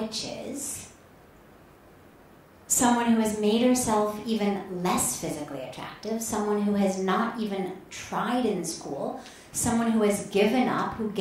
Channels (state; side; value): identical; both; correlation 1.00